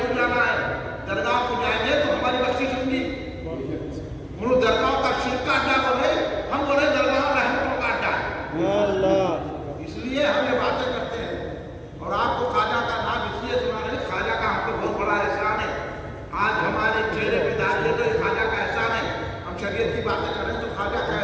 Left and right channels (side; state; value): both; identical; correlation 1.00